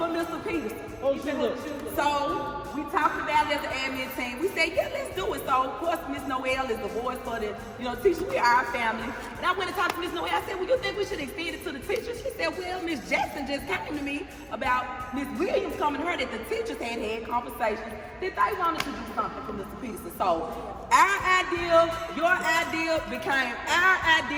Mr. Peterson. So we talked about it as an admin team. We said, yeah, let's do it. So of course Miss Noel is the voice for the teachers. We are our family. And I went and talked to Miss Noel. I said, well, you think we should extend it to the teachers? She said, well, Miss Jackson just came to me about Miss Williams coming to her that the teachers had conversations that they wanted to do something for Mr. Peterson. So our idea, your idea became our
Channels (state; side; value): identical; both; correlation 1.00